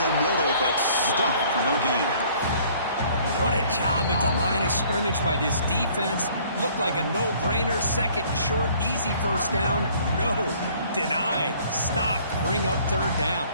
middle, but stuffed for no gain. What a job at the line of scrimmage by this defense. Looked like a no-brainer. Second and short, easy first down. No, denied. Stop, bring up third down.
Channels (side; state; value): both; inverted; correlation -0.57